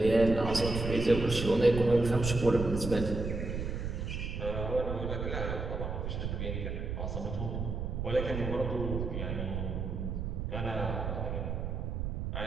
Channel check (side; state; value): right; noise; rumble, 3 dB below the sound